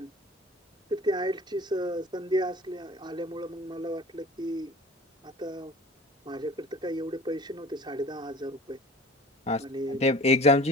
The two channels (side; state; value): both; normal; correlation 0.43